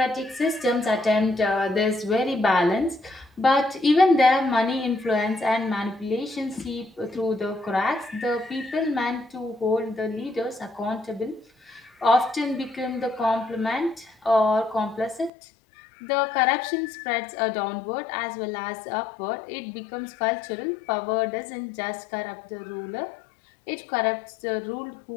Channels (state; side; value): drops out; right; at 15.3 s